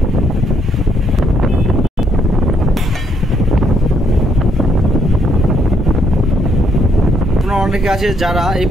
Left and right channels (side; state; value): both; normal; correlation 0.72